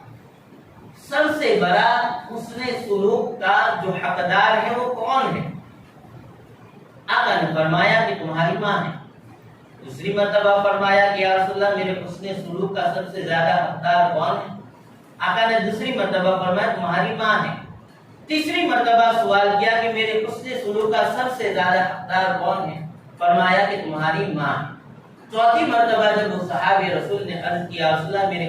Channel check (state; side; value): identical; both; correlation 1.00